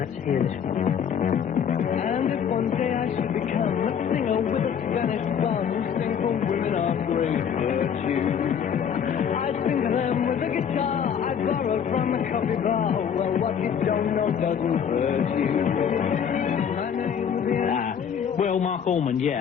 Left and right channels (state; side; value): quieter; right; 7.9 dB